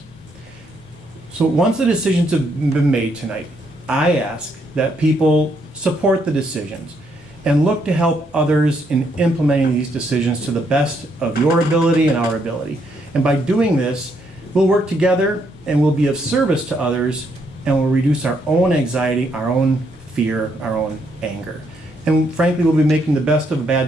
So once the decisions have been made tonight, I ask that people support the decisions and look to help others in implementing these decisions to the best of your ability and our ability. And by doing this, we'll work together and we'll be of service to others, and we'll reduce our own anxiety, our own fear, our own anger. And frankly, we'll be making the best of a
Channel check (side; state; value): both; normal; correlation 0.74